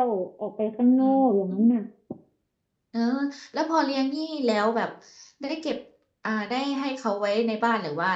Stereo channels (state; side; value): identical; both; correlation 1.00